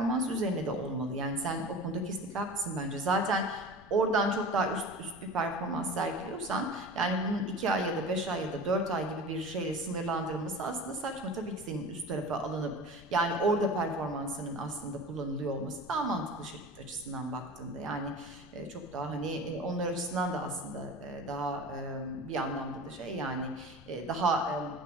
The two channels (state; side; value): noise; left; rumble, 20 dB below the sound